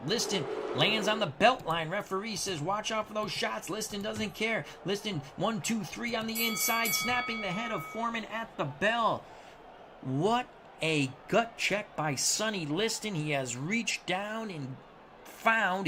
Liston lands on the belt line. Referee says, watch out for those shots. Liston doesn't care. Liston, 1, 2, 3 on the inside, snapping the head of Foreman at the bell. What a gut check by Sonny Liston. He has reached down and found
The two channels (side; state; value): both; identical; correlation 1.00